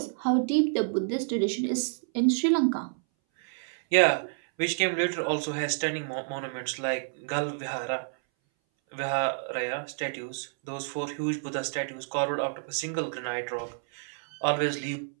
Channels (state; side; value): silent; left; 59 dB below the other